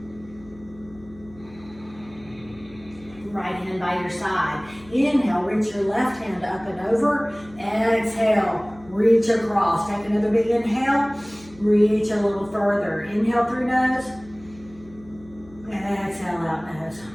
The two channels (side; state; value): left; noise; hum, 22 dB below the sound